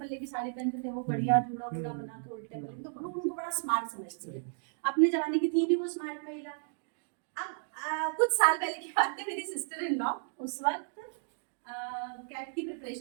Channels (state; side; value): silent; left; digital silence